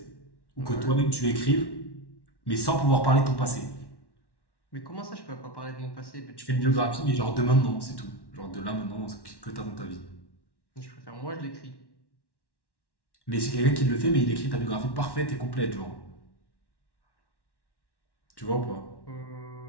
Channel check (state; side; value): late; right; 1.1 ms